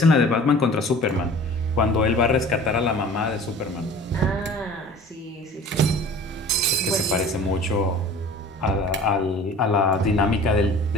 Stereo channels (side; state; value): both; normal; correlation 0.44